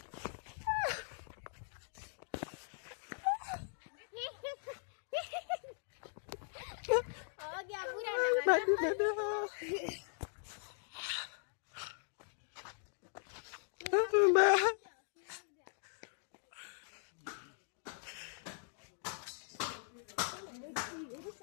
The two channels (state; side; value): silent; right; digital silence